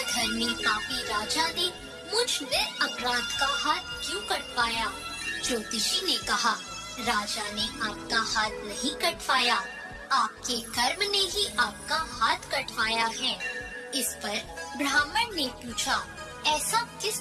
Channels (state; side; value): identical; both; correlation 1.00